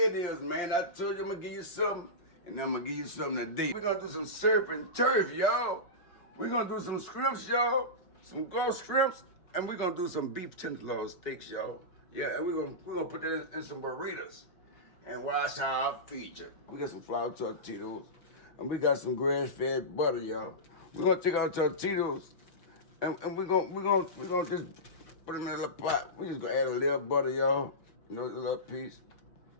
is, man. I told you I'm gonna give you something, and I'm gonna give you something today. We're gonna do some surf and turf, y'all. We're gonna do some shrimps, y'all. Some gulf shrimps, and we're gonna do some beef tenderloin steaks, y'all. Yeah, and we're gonna put that in some burritos. And watch how I feature. We got some flour tortillas, and we got some grass-fed butter, y'all. We're gonna take our tortillas, and we're gonna just put them in a little pot. We just gonna add a little butter, y'all. You know, a little piece.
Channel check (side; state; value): right; late; 5.6 ms